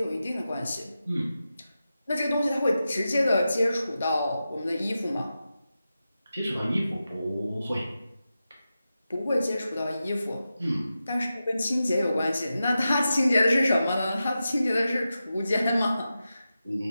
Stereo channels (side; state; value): both; inverted; correlation -0.92